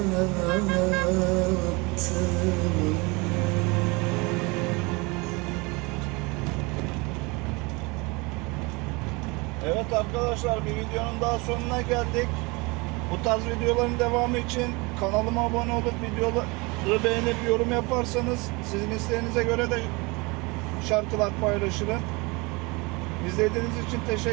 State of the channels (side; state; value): left; quieter; 26.5 dB